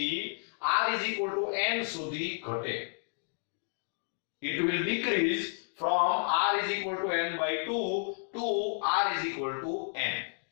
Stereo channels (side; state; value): right; silent; digital silence